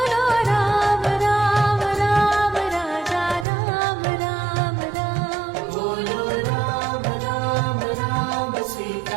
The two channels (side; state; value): left; drops out; at 3.5 s